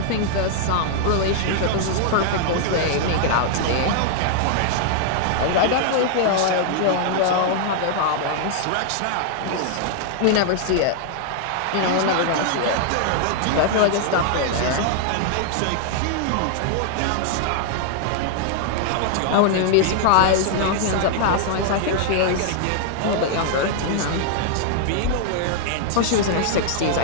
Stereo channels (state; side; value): different; both; correlation 0.00